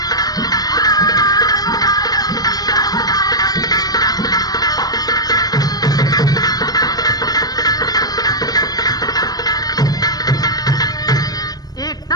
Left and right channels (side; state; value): right; late; 0.19 ms